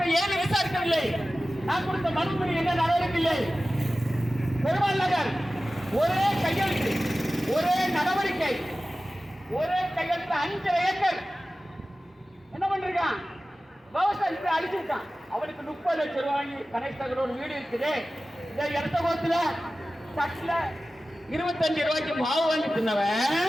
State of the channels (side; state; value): both; normal; correlation 0.95